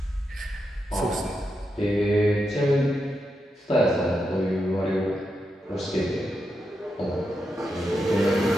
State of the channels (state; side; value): normal; both; correlation 0.85